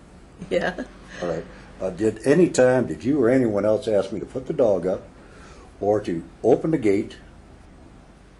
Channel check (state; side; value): identical; both; correlation 1.00